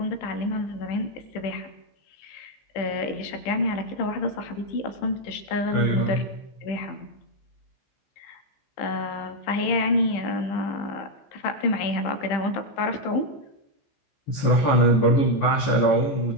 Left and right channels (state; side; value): late; right; 15 ms